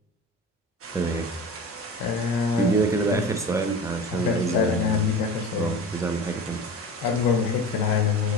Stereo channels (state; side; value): normal; both; correlation 0.34